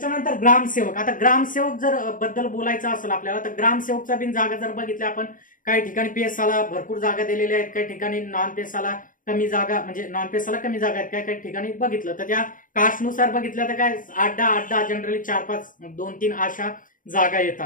ग्रामसेवक. आता ग्रामसेवक जर बद्दल बोलायचं असेल आपल्याला तर ग्रामसेवकचा बिन जागा जर बघितल्या आपण, काही ठिकाणी पीएसआला भरपूर जागा दिलेल्या आहेत, काही ठिकाणी नॉन पीएसआला कमी जागा, म्हणजे नॉन पीएसआला कमी जागा आहेत, काही काही ठिकाणी बघितलं तर त्या कास्टनुसार बघितलं तर काय 8-10 जनरली 4-5 2-3 अशा जागा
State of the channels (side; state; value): right; late; 0.39 ms